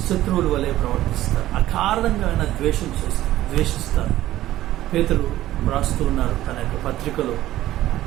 అకారణంగా ఆయన ద్వేషిస్తారు. పేతురు రాస్తూ ఉన్నారు తన యొక్క పత్రికలో,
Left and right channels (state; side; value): quieter; left; 14.6 dB